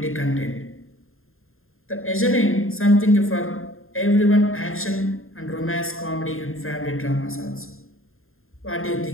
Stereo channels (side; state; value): right; late; 0.61 ms